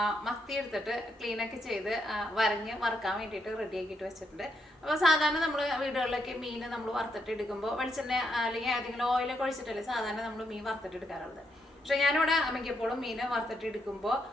മത്തി എടുത്തിട്ട് ക്ലീനൊക്കെ ചെയ്ത് വരഞ്ഞ് വറുക്കാൻ വേണ്ടിയിട്ട് റെഡി ആക്കിയിട്ട് വെച്ചിട്ടുണ്ട്. അപ്പോൾ സാധാരണ നമ്മൾ വീടുകളിലൊക്കെ മീൻ നമ്മൾ വറുത്തിട്ട് എടുക്കുമ്പോൾ വെളിച്ചെണ്ണ അല്ലെങ്കിൽ ഏതെങ്കിലും ഓയിലൊക്കെ ഒഴിച്ചിട്ടല്ലേ സാധാരണ നമ്മൾ മീൻ വറുത്തിട്ട് എടുക്കാറുള്ളത്. പക്ഷെ ഞാനിവിടെ മിക്കപ്പോഴും മീൻ വറുത്തിട്ട് എടുക്കുമ്പോൾ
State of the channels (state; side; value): normal; both; correlation 0.79